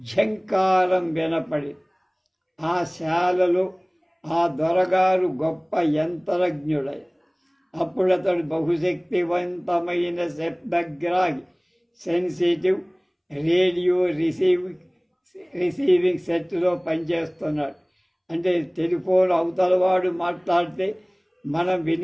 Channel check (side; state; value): both; identical; correlation 1.00